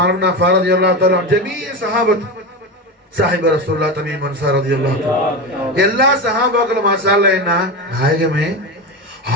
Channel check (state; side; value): normal; both; correlation 0.20